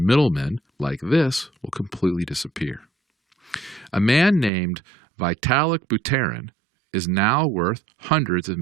like this will completely disappear. A man named Vitalik Buterin is now worth hundreds of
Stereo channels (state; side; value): drops out; left; at 4.5 s